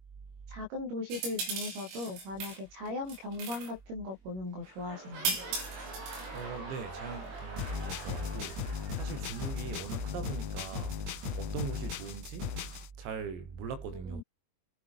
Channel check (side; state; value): left; late; 22 ms